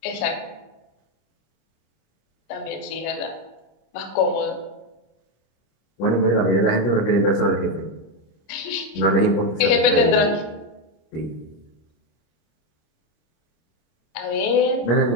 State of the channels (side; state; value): right; late; 26 ms